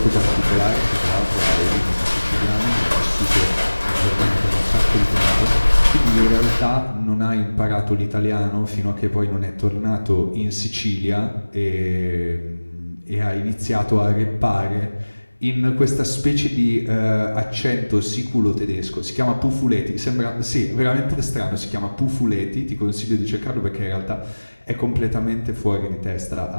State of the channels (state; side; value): inverted; both; correlation -1.00